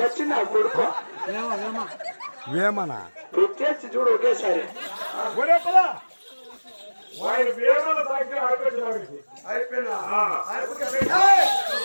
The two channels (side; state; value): both; inverted; correlation -1.00